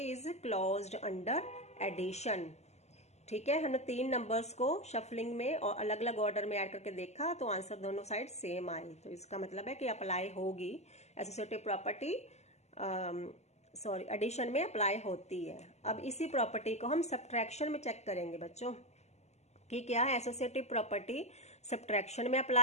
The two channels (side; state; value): right; late; 0.32 ms